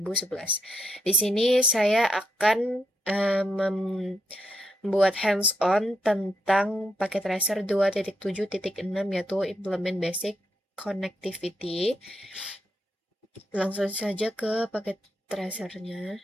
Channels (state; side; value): normal; both; correlation 0.81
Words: Di sini saya akan membuat hands-on tentang paket tracer 2.7.6 yaitu implement basic connectivity. Langsung saja ke paket tracernya.